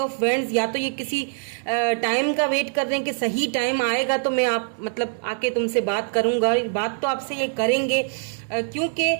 Wands। या तो ये किसी टाइम का वेट कर रहे हैं कि सही टाइम आएगा तो मैं आप मतलब आके तुमसे बात करूंगा। बात तो आपसे ये करेंगे, क्योंकि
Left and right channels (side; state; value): left; silent; 63 dB below the other